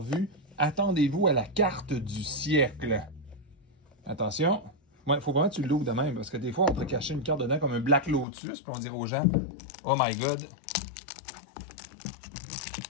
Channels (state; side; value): drops out; right; at 8.2 s